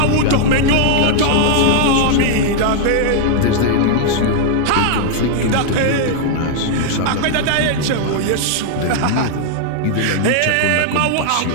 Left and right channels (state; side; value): different; both; correlation 0.00